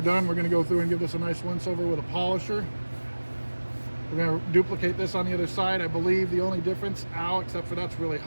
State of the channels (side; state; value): both; inverted; correlation -1.00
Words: done. We're going to go through and give this a nice once over with a polisher. We're going to duplicate this on the other side. I believe the only difference, except for that's really